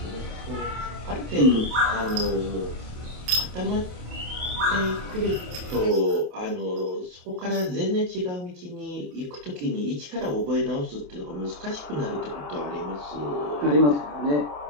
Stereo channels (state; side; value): late; left; 27 ms